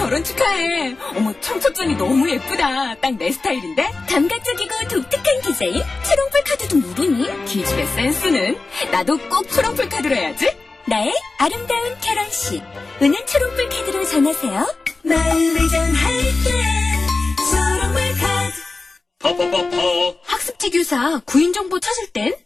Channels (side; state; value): right; quieter; 3.7 dB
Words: 축하해. 어머 청첩장이 너무 예쁘다. 딱 내 스타일인데? 감각적이고 독특한 디자인 초롱풀 카드도 모르니? 기집애 센스는? 나도 꼭 초롱풀 카드로 해야지. 나의 아름다운 결혼식 은은 초롱풀 카드로 전하세요. 마음을 전할 때 초롱풀 카드. 퍼퍼퍼퍼. 학습지 교사 구인 정보 찾을 땐